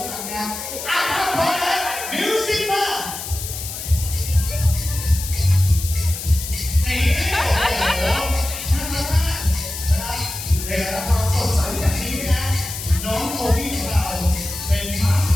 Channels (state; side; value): noise; left; hiss, 8 dB below the sound